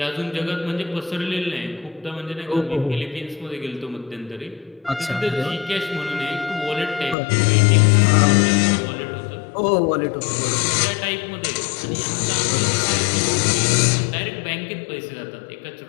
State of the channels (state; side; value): drops out; right; at 7.2 s